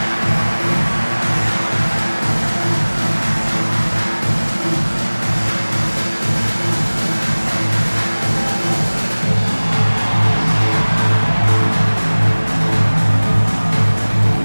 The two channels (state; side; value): inverted; both; correlation -1.00